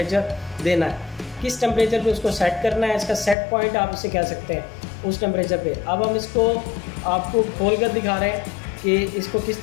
देना है, किस टेम्परेचर पे उसको सेट करना है। इसका सेट पॉइंट आप इसे कह सकते हैं उस टेम्परेचर पे। अब हम इसको आपको खोल कर दिखा रहे हैं कि इसको किस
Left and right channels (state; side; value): drops out; right; at 3.4 s